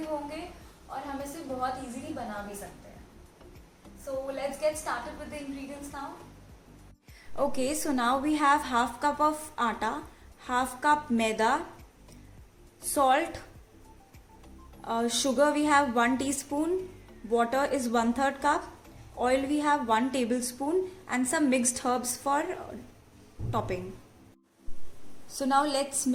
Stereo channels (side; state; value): both; identical; correlation 1.00